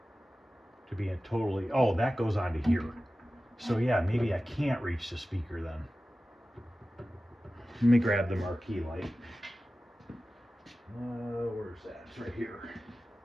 to be oh, that goes onto here. So yeah, maybe I can't reach the speaker then. Let me grab the marquee light. Where's that? It's right here.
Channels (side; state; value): both; normal; correlation 0.95